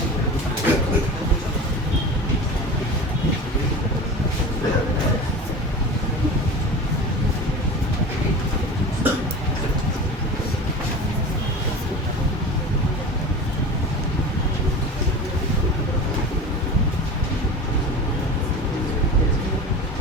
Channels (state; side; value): normal; both; correlation 0.33